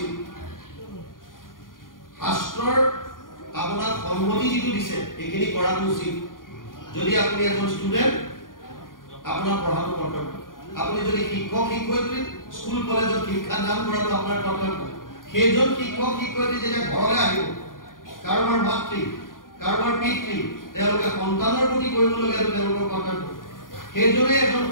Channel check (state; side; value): late; right; 0.90 ms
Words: শাস্ত্ৰৰ আপোনাৰ সন্মতি যিটো দিছে এইখিনি কৰাটো উচিত যদি আপুনি এজন ষ্টুডেন্ট আপোনাৰ পঢ়াটো কৰ্তব্য আপুনি যদি শিক্ষক শিক্ষয়িত্ৰী স্কুল কলেজত শিক্ষা দান কৰাটো আপোনাৰ কৰ্তব্য সেইজন শিক্ষক শিক্ষয়িত্ৰী যেতিয়া ঘৰলৈ আহিব কাৰোবাৰ মাতৃ কাৰোবাৰ পিতৃ তেওঁলোকে সন্তানৰ প্ৰতি কৰিবলগীয়া তেওঁলোকৰ কৰ্তব্য সেইজনে এজন